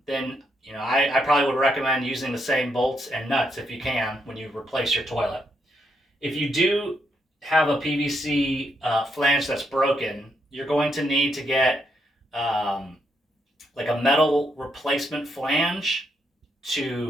then I probably would recommend using the same bolts and nuts if you can when you replace your toilet. If you do have a PVC flange that's broken, you're going to need to get like a metal replacement flange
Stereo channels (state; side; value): normal; both; correlation 0.78